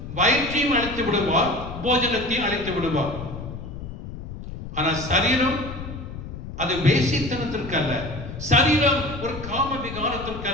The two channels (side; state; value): left; noise; rumble, 10 dB below the sound